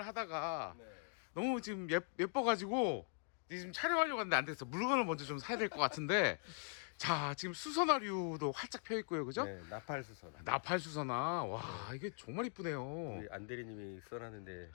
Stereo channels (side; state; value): right; silent; 50 dB below the other